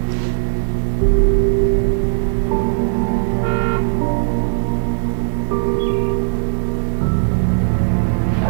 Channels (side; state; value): left; silent; 62 dB below the other